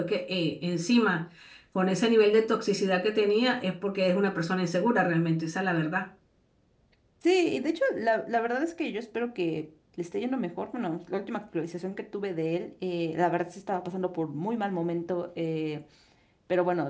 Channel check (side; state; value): both; identical; correlation 1.00